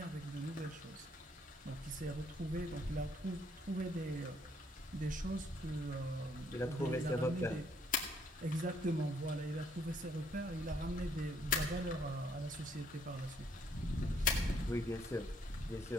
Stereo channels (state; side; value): normal; both; correlation 0.67